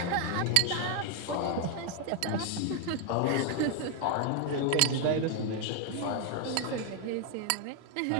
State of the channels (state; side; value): different; both; correlation 0.01